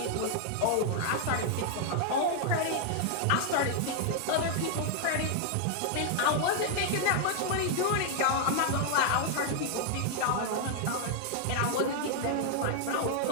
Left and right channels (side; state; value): both; different; correlation 0.00